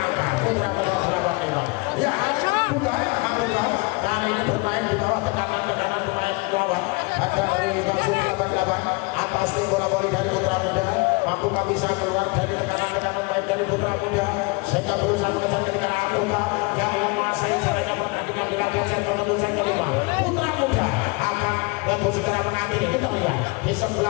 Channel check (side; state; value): right; quieter; 28.0 dB